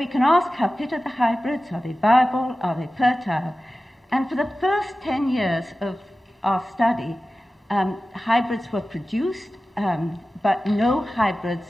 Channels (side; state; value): both; normal; correlation 0.95